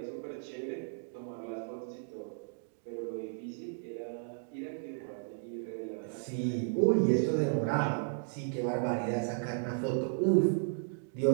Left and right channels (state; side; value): silent; left; digital silence